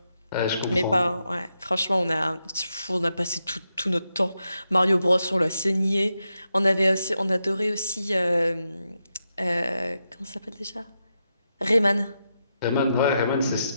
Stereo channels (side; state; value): both; inverted; correlation -0.85